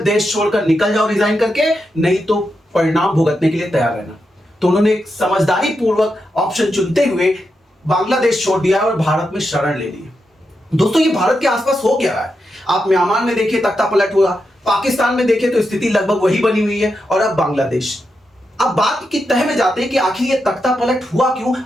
देश छोड़कर निकल जाओ रिजाइन करके, नहीं तो परिणाम भुगतने के लिए तैयार रहना। तो उन्होंने एक समझदारी पूर्वक ऑप्शन चुनते हुए बांग्लादेश छोड़ दिया और भारत में शरण ले ली। दोस्तों, ये भारत के आसपास हो क्या रहा है? आप म्यांमार में देखिए तख्ता पलट हुआ, पाकिस्तान में देखें तो स्थिति लगभग वही बनी हुई है, और अब बांग्लादेश। अब बात की तह में जाते हैं कि आखिर ये तख्ता पलट हुआ क्यों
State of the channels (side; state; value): both; normal; correlation 0.86